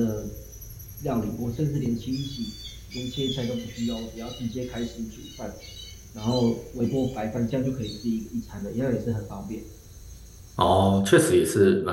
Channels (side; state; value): both; identical; correlation 1.00